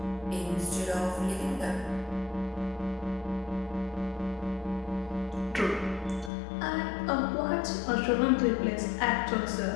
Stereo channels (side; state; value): right; drops out; at 6.3 s